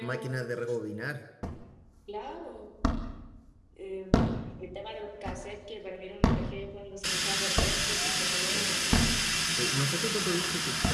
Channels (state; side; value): identical; both; correlation 1.00